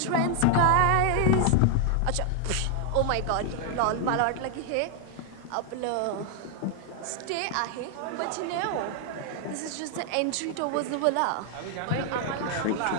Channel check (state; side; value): different; both; correlation 0.00